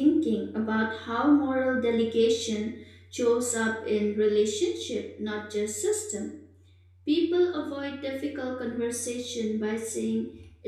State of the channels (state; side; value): identical; both; correlation 1.00